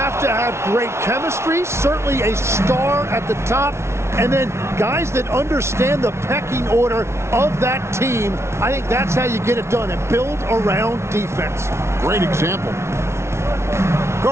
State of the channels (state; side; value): late; left; 0.13 ms